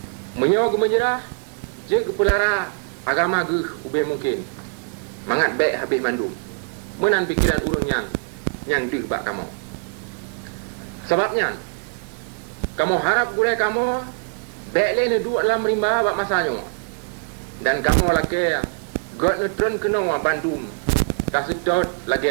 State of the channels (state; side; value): quieter; left; 38.3 dB